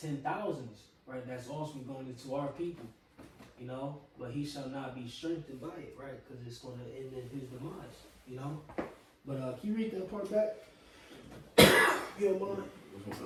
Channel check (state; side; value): identical; both; correlation 1.00